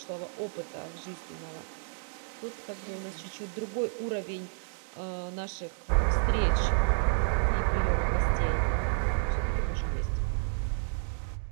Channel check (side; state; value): left; silent; 57 dB below the other